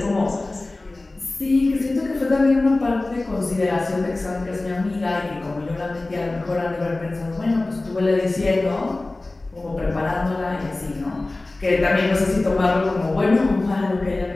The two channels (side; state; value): right; quieter; 3.0 dB